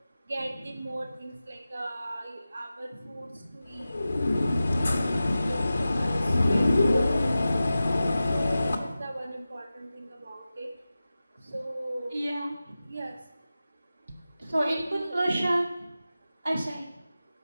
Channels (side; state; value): both; inverted; correlation -0.94